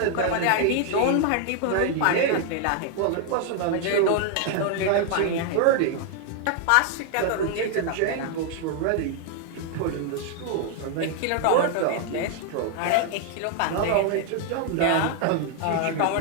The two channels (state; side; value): different; both; correlation 0.00